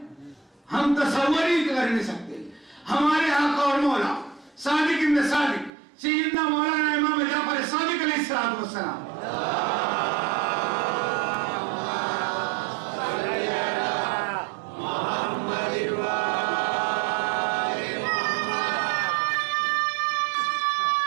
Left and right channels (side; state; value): left; drops out; at 5.7 s